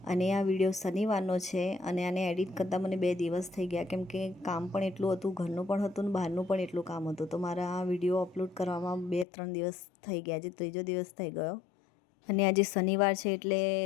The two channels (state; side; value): drops out; right; at 9.2 s